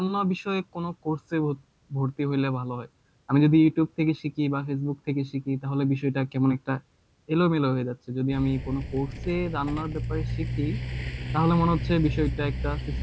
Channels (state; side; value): identical; both; correlation 1.00